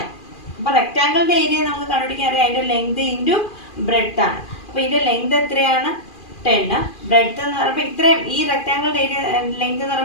അപ്പോൾ റെക്റ്റാങ്കിളിൻ്റെ ഏരിയ നമുക്ക് കണ്ടുപിടിക്കാൻ അറിയാം, അതിൻ്റെ ലെങ്ത് ഇൻറ്റു ബ്രെഡ്ത്ത് ആണ്. അപ്പോൾ ഇതിൻ്റെ ലെങ്ത് എത്രയാണ്, 10. ബ്രെഡ്ത്ത് എന്ന് പറയുമ്പോൾ ഇത്രയും, ഈ റെക്റ്റാങ്കിളിൻ്റെ ഏരിയ ലെങ്ത് എന്ന്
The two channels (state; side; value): late; right; 2.4 ms